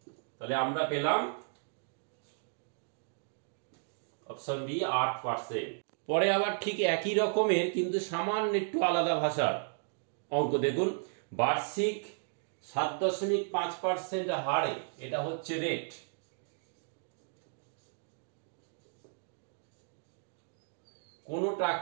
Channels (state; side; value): silent; left; digital silence